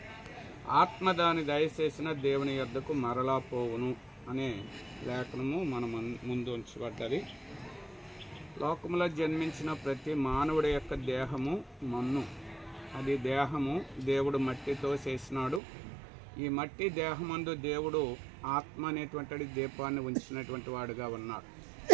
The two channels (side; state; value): left; drops out; at 15.6 s